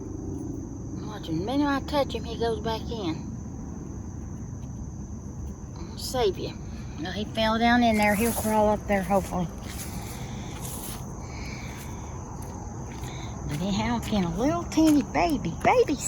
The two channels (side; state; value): both; identical; correlation 1.00